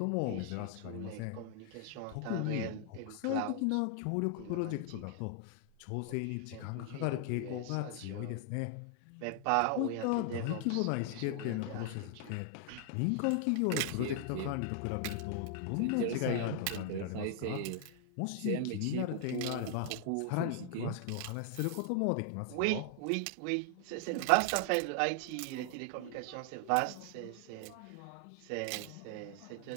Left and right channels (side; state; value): both; different; correlation 0.00